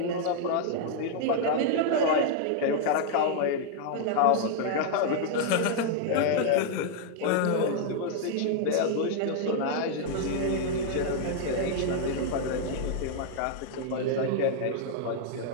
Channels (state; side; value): different; both; correlation 0.00